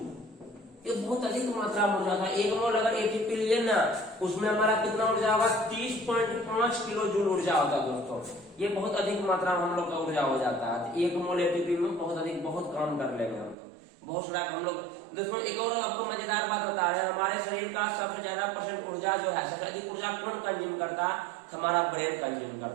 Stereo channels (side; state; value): left; drops out; at 13.6 s